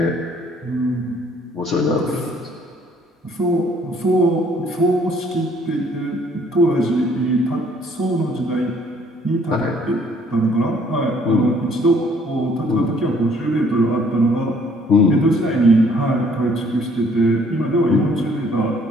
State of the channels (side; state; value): both; normal; correlation 0.61